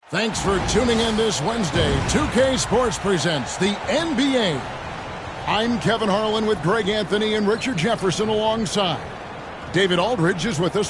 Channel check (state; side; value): identical; both; correlation 1.00